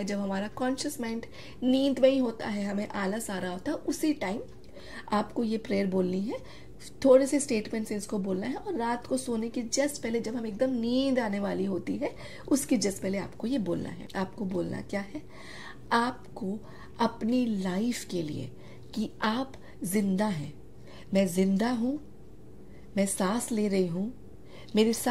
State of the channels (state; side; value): identical; both; correlation 1.00